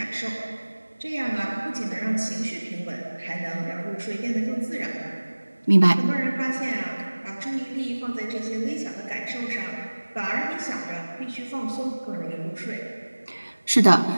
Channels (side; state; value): both; inverted; correlation -1.00